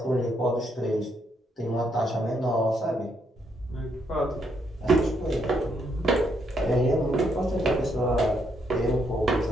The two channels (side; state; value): both; normal; correlation 0.75